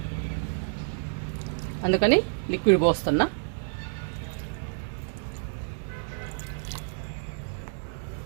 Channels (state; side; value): silent; left; digital silence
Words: అందుకని లిక్విడ్ పోస్తున్నా.